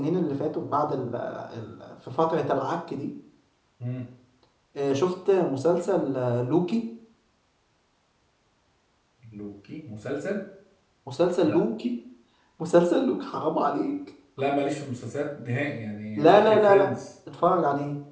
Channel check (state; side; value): identical; both; correlation 1.00